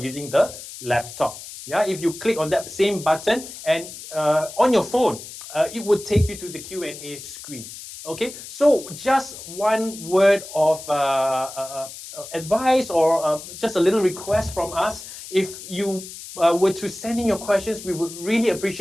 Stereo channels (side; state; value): left; noise; hiss, 13 dB below the sound